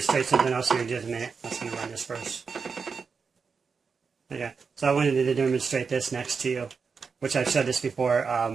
something else here in just a minute. I'm just going to run this first. Okay, so I wanted to demonstrate this next to you, which I've showed this before.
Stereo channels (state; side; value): quieter; left; 5.4 dB